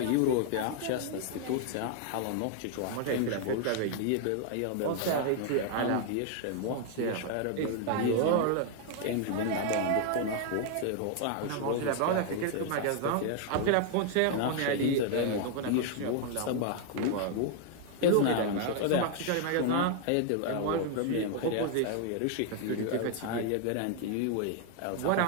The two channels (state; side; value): different; both; correlation 0.00